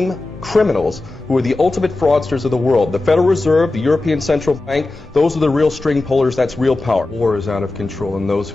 criminals who are the ultimate fraudsters of the world. The Federal Reserve, the European Central Bank, those are the real string pullers, that's real power. War is out of control, and those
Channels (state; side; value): quieter; right; 3.0 dB